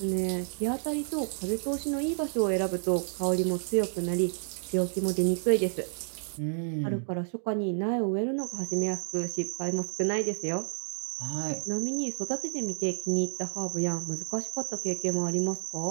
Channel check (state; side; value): silent; left; digital silence